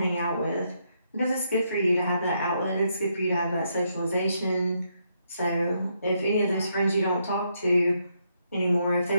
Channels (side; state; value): both; inverted; correlation -0.77